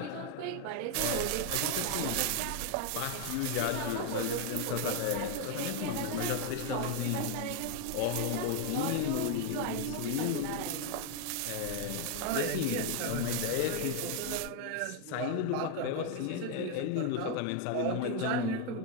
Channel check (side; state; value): both; different; correlation 0.01